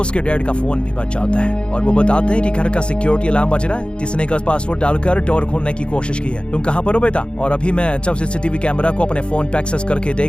उसके डैड का फोन भी बच जाता है और वो बताते हैं कि घर का सिक्योरिटी अलार्म बज रहा है, जिसने का पासवर्ड डालकर डोर खोलने की कोशिश की है। तुम कहाँ पर हो बेटा? और अभी मैं जब सीसीटीवी कैमरा को अपने फोन पे एक्सेस करके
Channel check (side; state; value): right; late; 0.055 ms